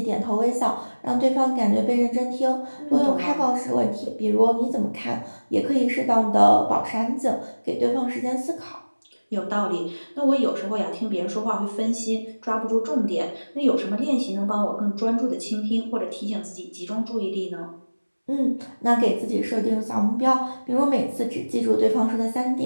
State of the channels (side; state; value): both; inverted; correlation -1.00